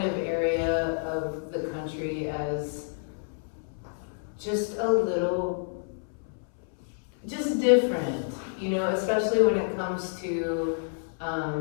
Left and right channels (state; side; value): silent; right; 59 dB below the other